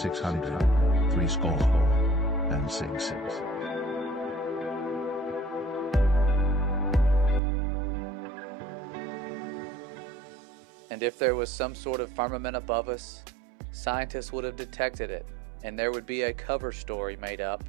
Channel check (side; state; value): left; drops out; at 7.4 s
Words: And if there was some sort of firmament above us, scientists would have detected it, and there would be a cover story made up